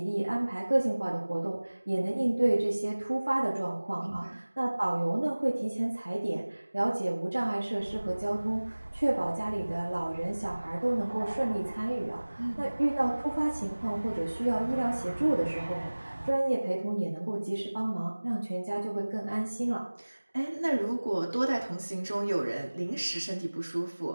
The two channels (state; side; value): inverted; both; correlation -1.00